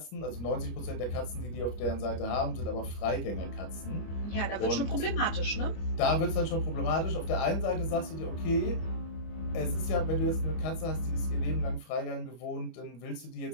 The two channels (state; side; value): late; right; 25 ms